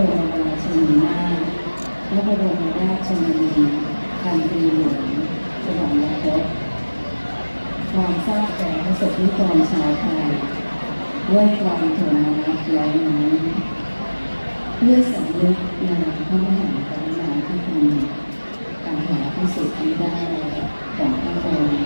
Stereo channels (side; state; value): both; inverted; correlation -1.00